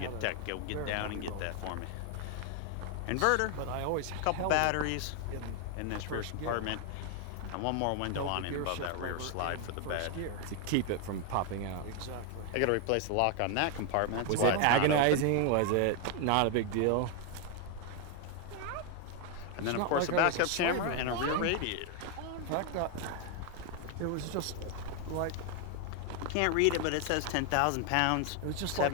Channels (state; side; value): different; both; correlation 0.01